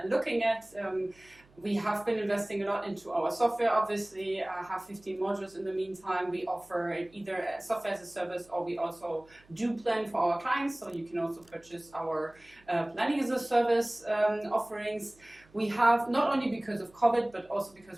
looking at. We have been investing a lot into our software, obviously, have 15 modules in the meantime. We offer either software as a service, or we also do plan for our clients, so you can also purchase our planning as a service offerings. We have, not only because of COVID, but also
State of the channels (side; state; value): right; noise; hum, 29 dB below the sound